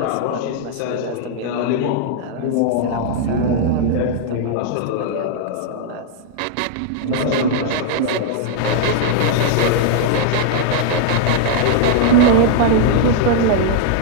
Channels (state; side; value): different; both; correlation -0.01